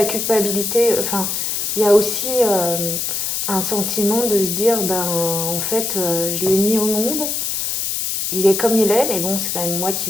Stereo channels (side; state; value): left; noise; hiss, 1 dB below the sound